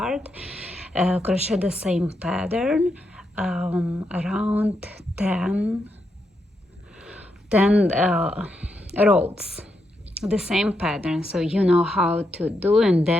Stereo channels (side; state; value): both; normal; correlation 0.83